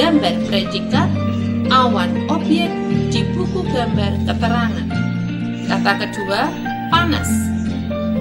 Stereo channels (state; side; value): identical; both; correlation 1.00